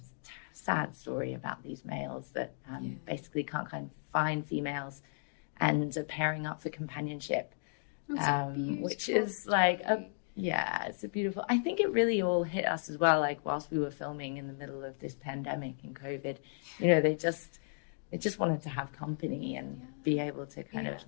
sad story about these males that basically can't kind of find females and are pairing up for companionship, which is like, it's a beautiful, I think it really all hit us as well, like whilst we were filming in the middle of this pandemic and COVID, they just wanted to have company and be able to kind of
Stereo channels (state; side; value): silent; right; digital silence